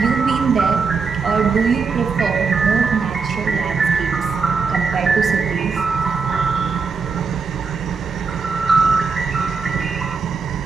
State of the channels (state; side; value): quieter; left; 5.0 dB